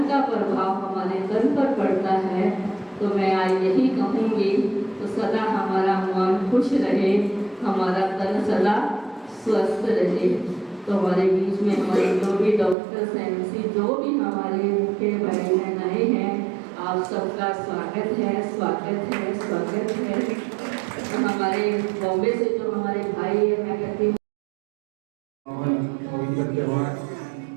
का प्रभाव हमारे तन पर पड़ता है। तो मैं आज यही कहूँगी, तो सदा हमारा मन खुश रहे, हमारा तन सदा स्वस्थ रहे। तो हमारे बीच में हमारे जो भी डॉक्टर्स MC जो भी हमारे मुख्य भाई बहन आए हैं, आप सबका स्वागत है, स्वागत है, स्वागत है। तो हमारे बॉम्बे से जो हमारे भाई है, मैं कहती हूँ पवित्र त्योहार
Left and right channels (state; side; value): drops out; left; at 12.8 s